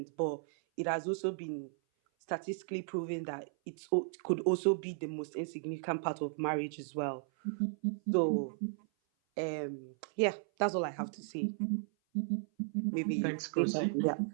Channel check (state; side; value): silent; left; 54 dB below the other